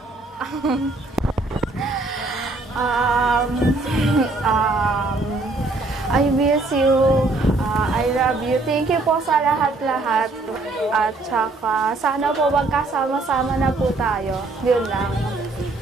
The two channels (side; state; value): left; quieter; 3.2 dB